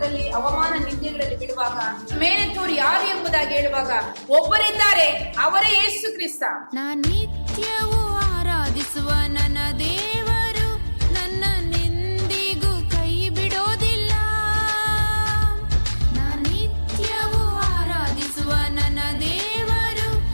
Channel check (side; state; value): both; inverted; correlation -1.00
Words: ಅವಮಾನ, ನಿಂದೆಗಳಲ್ಲಿ ಬಿಡುವಾಗ ಮೇಲೆತ್ತೋರು ಯಾರು ಎಂಬುದಾಗಿ ಹೇಳುವಾಗ ಒಬ್ಬರಿದ್ದಾರೆ, ಅವರೇ ಯೇಸು ಕ್ರಿಸ್ತ. ನಿತ್ಯವೂ ಆರಾಧಿಸುವ ನನ್ನ ದೇವರು ನನ್ನೆಂದಿಗೂ ಕೈ ಬಿಡೋದಿಲ್ಲ. ನಿತ್ಯವೂ ಆರಾಧಿಸುವ ನನ್ನ ದೇವರು